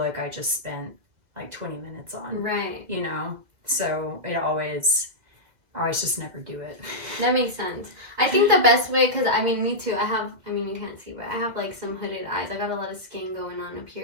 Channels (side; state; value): left; late; 2.0 ms